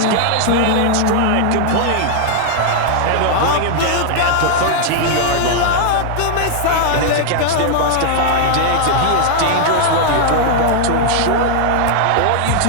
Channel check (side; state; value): both; different; correlation -0.01